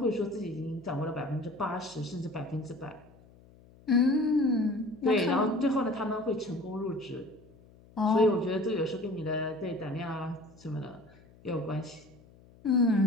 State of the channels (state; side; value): noise; left; hum, 25 dB below the sound